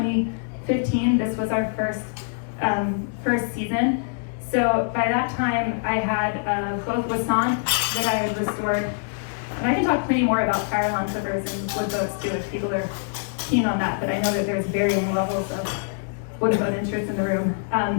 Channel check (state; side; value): silent; right; 62 dB below the other